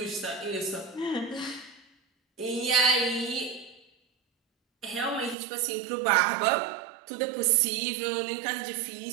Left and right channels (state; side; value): drops out; left; at 5.4 s